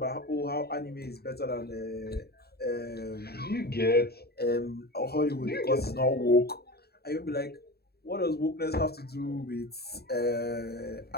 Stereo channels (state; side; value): late; right; 0.46 ms